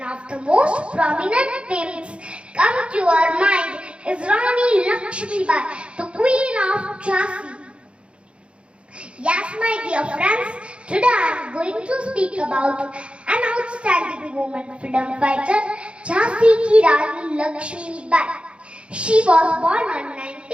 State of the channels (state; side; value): late; left; 0.058 ms